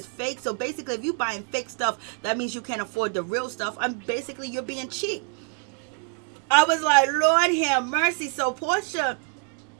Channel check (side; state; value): left; quieter; 38.4 dB